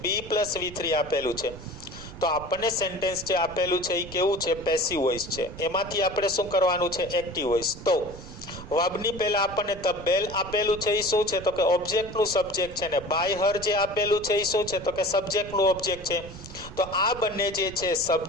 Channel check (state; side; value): noise; right; rumble, 15 dB below the sound